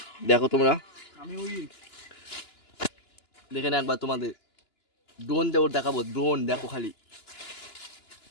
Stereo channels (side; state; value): right; late; 2.9 ms